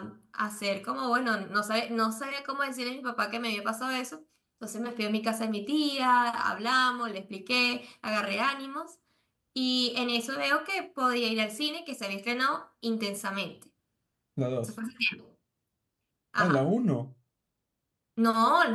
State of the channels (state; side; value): identical; both; correlation 1.00